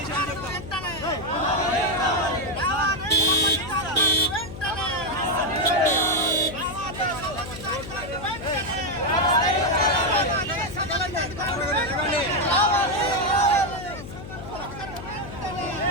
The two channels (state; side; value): noise; left; hum, 12 dB below the sound